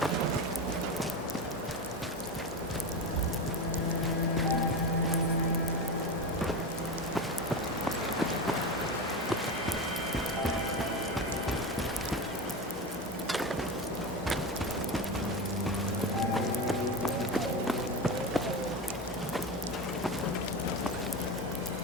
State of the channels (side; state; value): both; normal; correlation 0.21